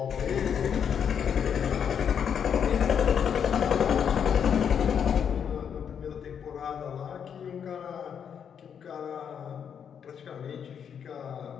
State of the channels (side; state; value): right; quieter; 7.8 dB